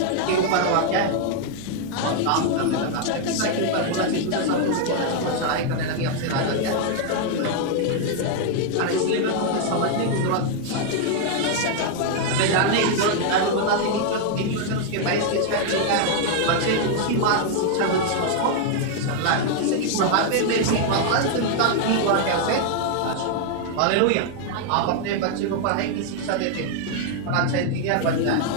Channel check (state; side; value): different; both; correlation 0.00